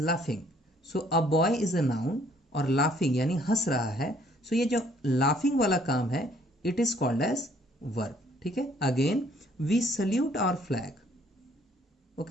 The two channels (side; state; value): both; normal; correlation 0.62